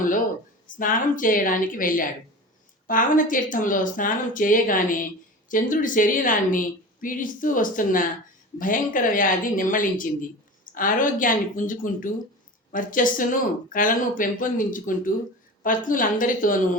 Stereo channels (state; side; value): normal; both; correlation 0.33